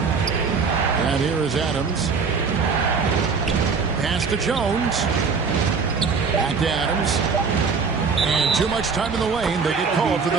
And here is Adams. Pass to Jones. Back to Adams. And too much time in the lane. They get called for the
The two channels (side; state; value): left; quieter; 5.2 dB